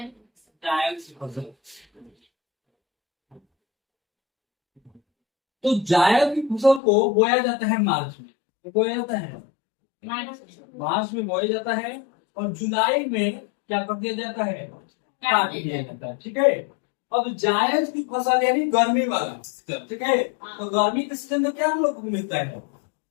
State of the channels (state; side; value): drops out; right; at 6.8 s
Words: की फसल। तो जायद की फसल को बोया जाता है मार्च में, बोया जाता है मार्च में बोया जाता है, और जुलाई में क्या कर दिया जाता है, काट दिया जाता है, ठीक है। अब जायद की फसल यानी गर्मी वाला, ठीक है। तो गर्मी के सीजन में क्या हम लोग को मिलता है,